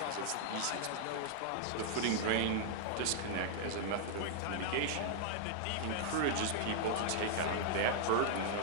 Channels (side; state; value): both; different; correlation -0.01